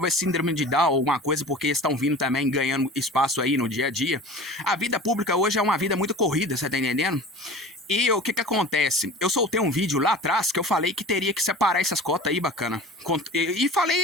síndrome de Down ou alguma coisa, porque estão vindo também ganhando espaço aí no dia a dia. A vida pública hoje é uma vida muito corrida, você tá entendendo? E o que acontece? Eu soltei um vídeo lá atrás que eu falei que teria que separar essas cotas aí, bacana. E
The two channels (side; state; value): both; normal; correlation 0.39